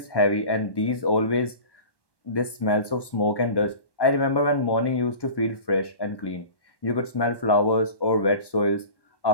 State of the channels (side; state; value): right; late; 1.1 ms